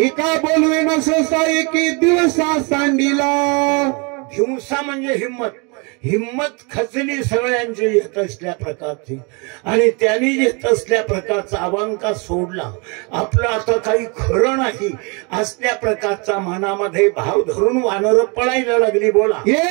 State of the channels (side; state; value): left; quieter; 31.9 dB